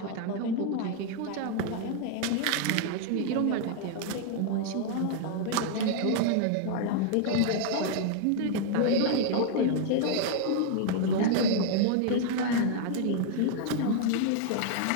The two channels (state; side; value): different; both; correlation 0.00